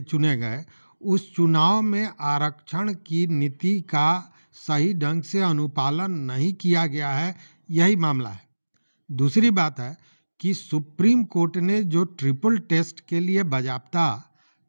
चुने गए, उस चुनाव में आरक्षण की नीति का सही ढंग से अनुपालन नहीं किया गया है, यही मामला है। दूसरी बात है कि सुप्रीम कोर्ट ने जो ट्रिपल टेस्ट के लिए बाज़ाब्ता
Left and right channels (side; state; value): both; inverted; correlation -1.00